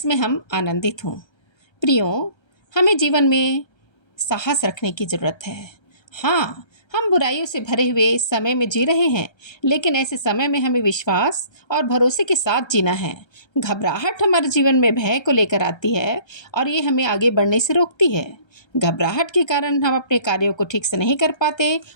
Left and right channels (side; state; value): right; late; 1.3 ms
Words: हम आनंदित हों। प्रियो, हमें जीवन में साहस रखने की ज़रूरत है। हाँ, हम बुराइयों से भरे हुए समय में जी रहे हैं, लेकिन ऐसे समय में हमें विश्वास और भरोसे के साथ जीना है। घबराहट हमारे जीवन में भय को लेकर आती है और ये हमें आगे बढ़ने से रोकती है। घबराहट के कारण हम अपने कार्यों को ठीक से नहीं कर पाते